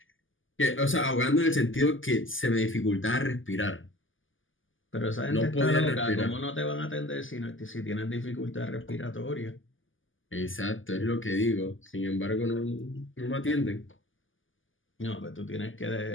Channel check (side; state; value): right; late; 0.58 ms